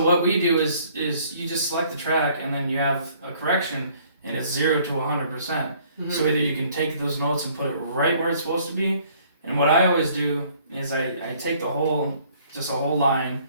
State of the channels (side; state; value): both; inverted; correlation -0.59